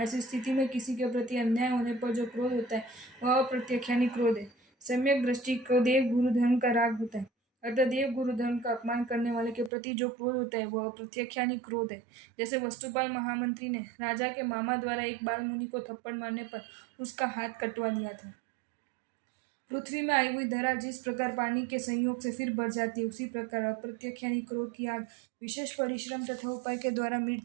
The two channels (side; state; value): left; drops out; at 9.7 s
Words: स्थिति में किसी के प्रति अन्याय होने पर जो क्रोध होता है वह अप्रत्याख्यानी क्रोध है। सम्यक दृष्टि को देव गुरु धर्म का राग होता है। अतः देव गुरु धर्म का अपमान करने वाले के प्रति जो क्रोध होता है वह अप्रत्याख्यानी क्रोध है। जैसे वस्तुपाल महामंत्री ने राजा के मामा द्वारा एक बाल मुनि को थप्पड़ मारने पर उसका हाथ कटवा दिया था। पृथ्वी में आई हुई धरा जिस प्रकार पानी के संयोग से फिर बढ़ जाती है, उसी प्रकार अप्रत्याख्यानी क्रोध की आग विशेष परिश्रम तथा उपाय के द्वारा मिट